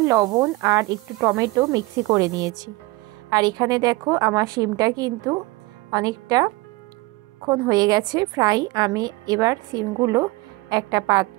লবণ আর একটু টমেটো মিক্সি করে নিয়েছি। আর এখানে দেখো আমার শিমটা কিন্তু অনেকটা ক্ষণ হয়ে গেছে ফ্রাই। আমি এবার শিমগুলো একটা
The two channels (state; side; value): quieter; left; 22.1 dB